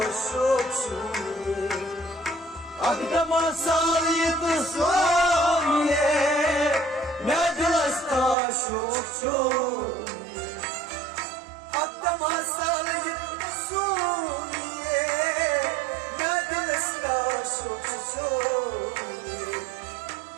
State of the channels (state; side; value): drops out; left; at 8.3 s